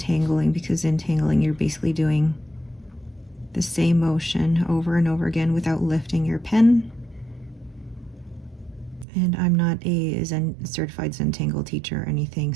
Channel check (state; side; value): drops out; left; at 9.1 s